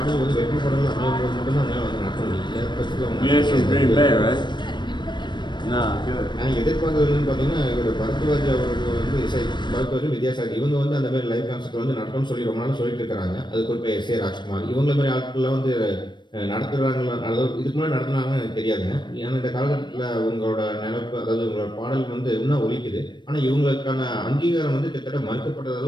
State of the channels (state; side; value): late; right; 0.22 ms